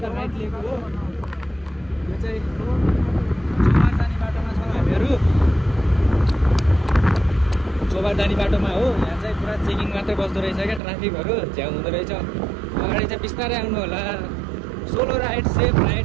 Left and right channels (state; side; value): drops out; left; at 10.8 s